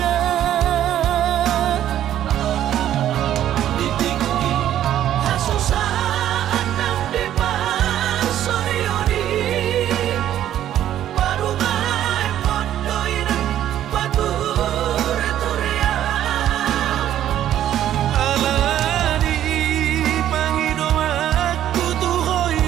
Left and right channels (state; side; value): quieter; left; 11.6 dB